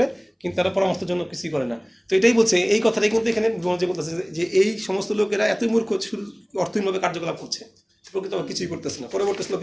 কিন্তু তারা পরামর্শের জন্য কিছুই করে না। তো এটাই বলছে, এই কথাটাই কিন্তু এখানে ব্রহ্মাজি বলতেছে যে এই সমস্ত লোকেরা এতই মূর্খ, শুধু অর্থহীনভাবে কার্যকলাপ করছে, প্রকৃত কিছুই করতেছে না। পরবর্তী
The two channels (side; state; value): both; identical; correlation 1.00